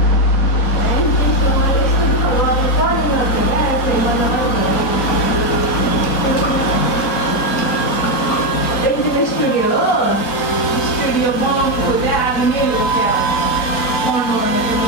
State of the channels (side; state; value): right; late; 4.8 ms